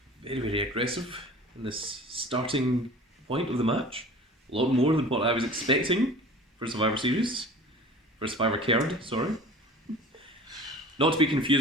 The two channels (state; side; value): normal; both; correlation 0.42